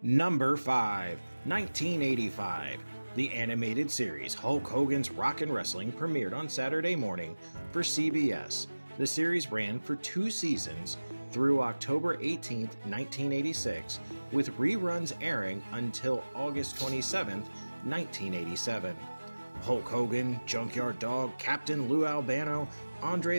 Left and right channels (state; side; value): inverted; both; correlation -1.00